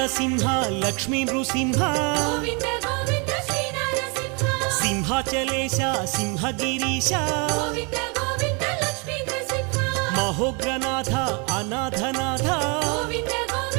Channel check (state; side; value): quieter; left; 32.8 dB